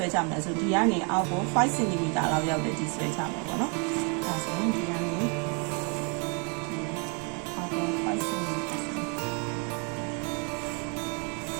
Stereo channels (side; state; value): left; quieter; 36.1 dB